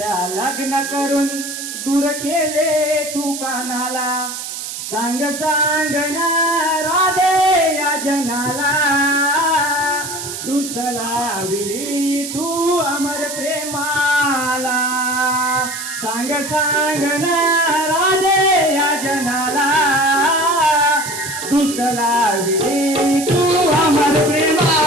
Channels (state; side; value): noise; right; hiss, 7 dB below the sound